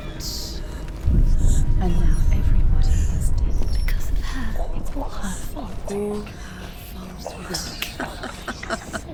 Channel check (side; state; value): both; identical; correlation 1.00